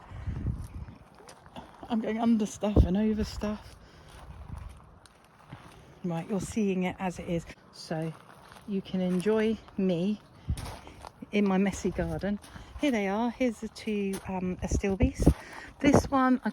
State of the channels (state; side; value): identical; both; correlation 1.00